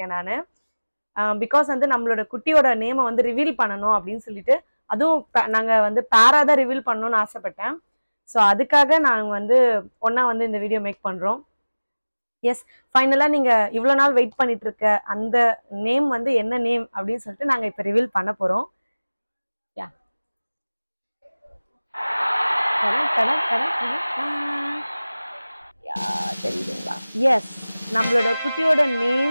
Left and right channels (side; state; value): both; inverted; correlation -1.00